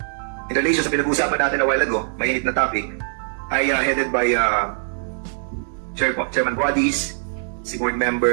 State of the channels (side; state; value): left; silent; digital silence